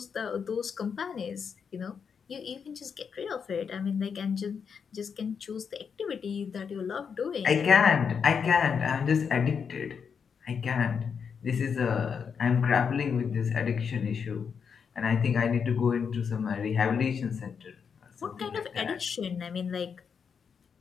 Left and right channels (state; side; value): quieter; right; 6.5 dB